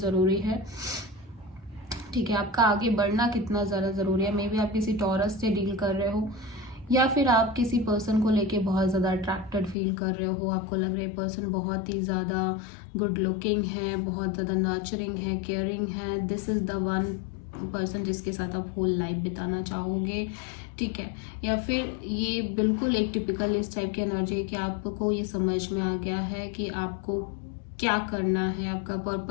है, ठीक है, आपका आगे बढ़ना कितना ज़्यादा ज़रूरी है। मे बी आप किसी टॉरस से डील कर रहे हो या फिर आप किसी पर्सन को लेके बहुत ज़्यादा अट्रैक्टेड फील कर रहे हो, आपको लग रहा है पर्सन बहुत ही ज़्यादा गुड लुकिंग है, बहुत ज़्यादा नर्चरिंग है, केयरिंग है, this is the one person जिसके साथ आप होल लाइफ बिताना चाहोगे, ठीक है। या फिर ये बिल्कुल एक टिपिकल इस टाइप की एनर्जी है कि आपको ये समझ में आ गया है कि आपको क्या करना है, आपका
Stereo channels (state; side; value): drops out; right; at 9.8 s